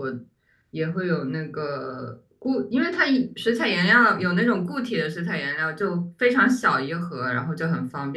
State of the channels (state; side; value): identical; both; correlation 1.00